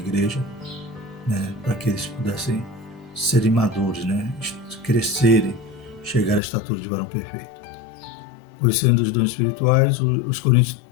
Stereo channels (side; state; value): right; drops out; at 6.4 s